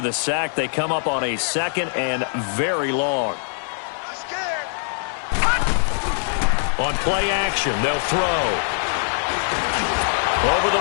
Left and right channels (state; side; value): silent; right; digital silence